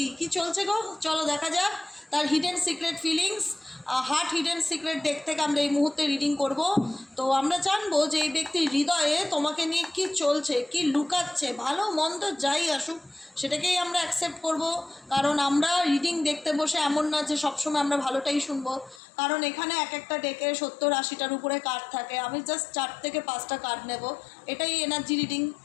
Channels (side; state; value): right; drops out; at 19.0 s